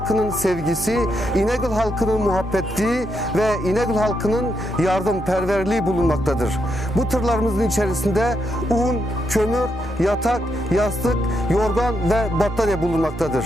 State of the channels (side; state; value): both; normal; correlation 0.81